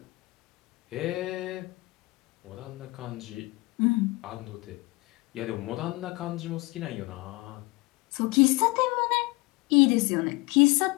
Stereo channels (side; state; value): right; quieter; 23.9 dB